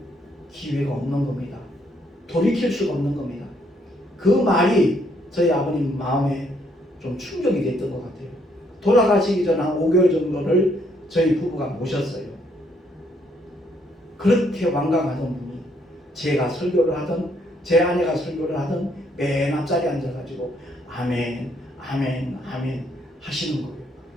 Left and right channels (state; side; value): normal; both; correlation 0.70